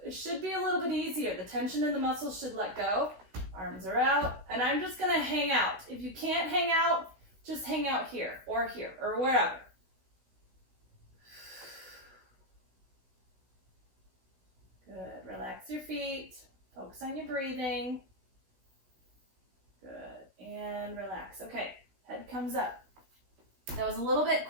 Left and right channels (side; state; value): left; late; 16 ms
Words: It should be a little bit easier. The tension in the muscles should let go. Arms are out, and I'm just gonna hang out. If you can't hang out, just hang out here, or wherever. Good, relax your feet, focus on your breathing. Good, and relax. Okay, head comes up. That was a little bit